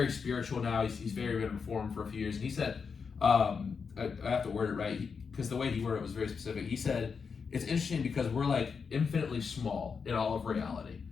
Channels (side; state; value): right; quieter; 5.7 dB